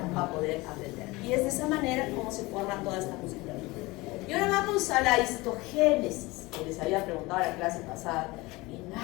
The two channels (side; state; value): right; quieter; 22.2 dB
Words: a poder aprender. Y es de esa manera como se forma toda esta musculatura. Y ahora vamos a la histogénesis, que les había preguntado en la clase pasada y